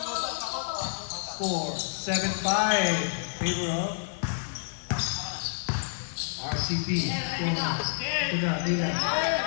4, 7-5. Favor of RCP. Ito na.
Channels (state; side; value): silent; right; digital silence